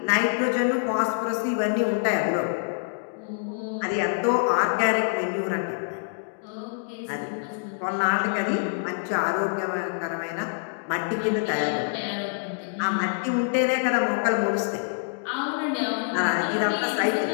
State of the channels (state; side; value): silent; right; digital silence